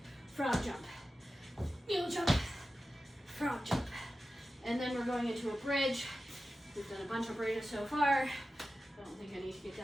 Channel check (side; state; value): both; normal; correlation 0.93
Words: Frog jump. Mule jump. Frog jump. And then we're going into a bridge. We've done a bunch of bridges so far. I don't think I need to get